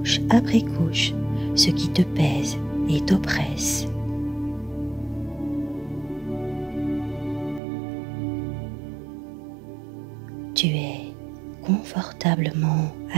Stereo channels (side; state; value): left; drops out; at 7.6 s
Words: après couche ce qui te pèse et t'oppresse. Tu es confortablement